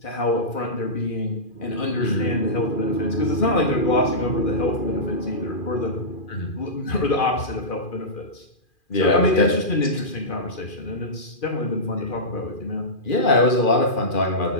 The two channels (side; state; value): right; late; 2.4 ms